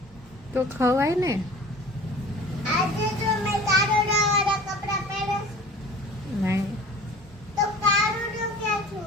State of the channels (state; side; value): normal; both; correlation 0.43